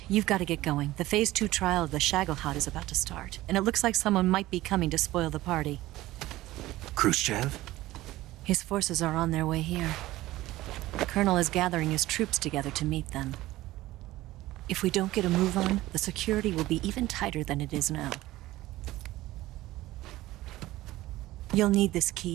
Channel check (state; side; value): quieter; left; 16.9 dB